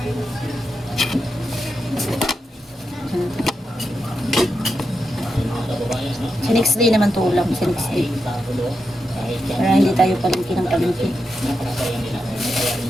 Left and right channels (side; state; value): both; normal; correlation 0.87